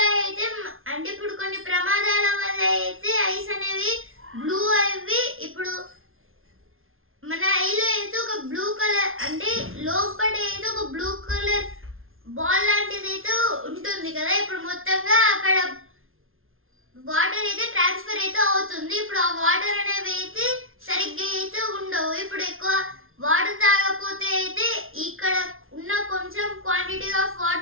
అయితే అంటే ఇప్పుడు కొన్ని ప్రమాదాల వల్ల అయితే ఐస్ అనేవి బ్లూ అవి ఇప్పుడు మన ఐలో అయితే ఒక బ్లూ కలర్ అంటే లోపల అయితే ఒక బ్లూ కలర్ బాల్ లాంటిది అయితే ఉంటుంది కదా. ఇప్పుడు మొత్తంగా అక్కడ వాటర్ అయితే ట్రాన్స్ఫర్ అయితే అవుతుంది. ఇప్పుడు ఆ వాటర్ అనేవి అయితే సరిగ్గా అయితే ఉండవు. ఇప్పుడు ఎక్కువ వాటర్ తాగకపోతే అయితే ఇక్కడ ఉన్న కొంచెం క్వాంటిటీ ఆఫ్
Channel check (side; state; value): left; late; 0.61 ms